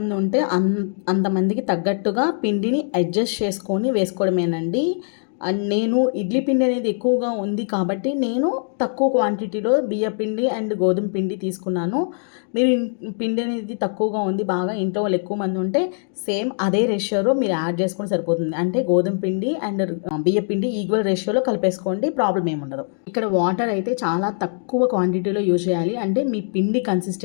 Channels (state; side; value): silent; right; 64 dB below the other